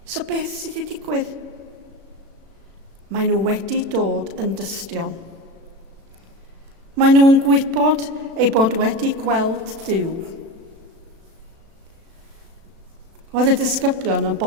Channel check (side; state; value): left; late; 36 ms